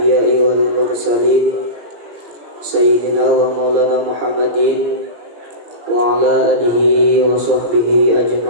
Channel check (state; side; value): late; left; 17 ms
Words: wal mursalin sayyidina wa maulana Muhammadin wa ala alihi wa sahbihi